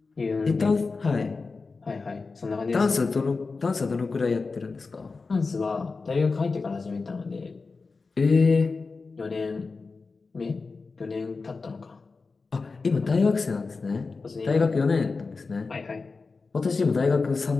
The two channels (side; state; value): right; quieter; 4.2 dB